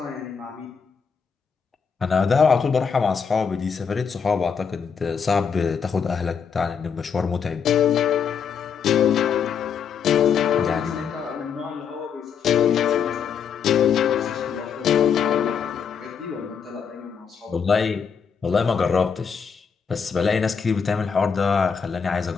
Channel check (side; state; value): right; quieter; 6.7 dB